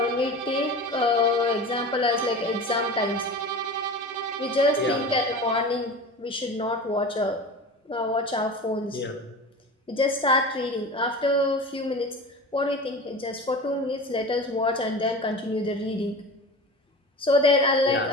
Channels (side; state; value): both; normal; correlation 0.33